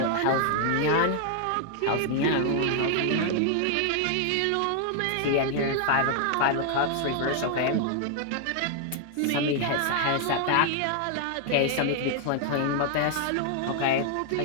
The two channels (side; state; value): both; different; correlation 0.00